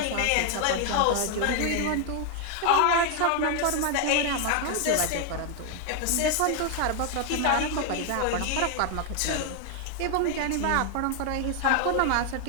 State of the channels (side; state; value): both; different; correlation 0.00